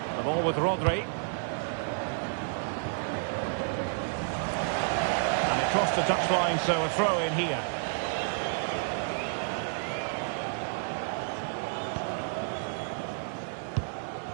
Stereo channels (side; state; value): left; silent; 57 dB below the other